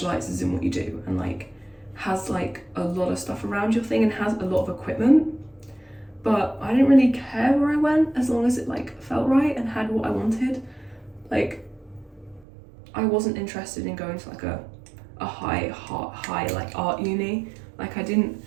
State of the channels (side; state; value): left; drops out; at 12.5 s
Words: in what you do and like has like a lot of stuff around your thing and has a lot of equipment. But I didn't really care where I went as long as it like felt right and had what I wanted. Like I wasn't interested in going to like a high like art uni. Like